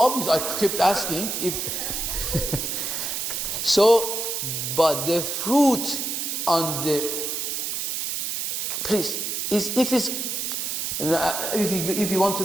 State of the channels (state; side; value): noise; right; hiss, 2 dB below the sound